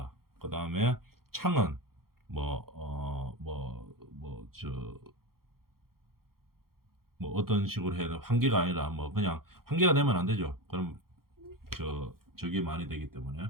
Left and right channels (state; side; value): late; left; 0.93 ms